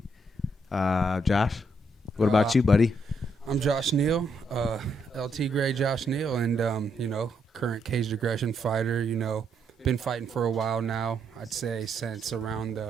Josh, what about you, buddy? I'm Josh Neal, LT Gray Josh Neal, and current caged aggression fighter. Been fighting for a while now. I'd say since around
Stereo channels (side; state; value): both; normal; correlation 0.76